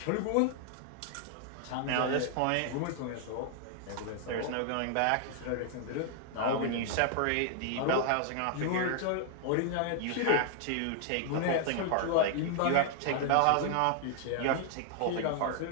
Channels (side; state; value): both; different; correlation 0.00